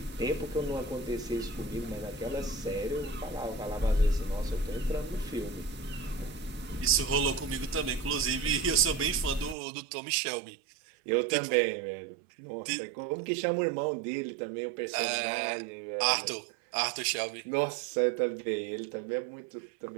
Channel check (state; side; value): drops out; left; at 9.6 s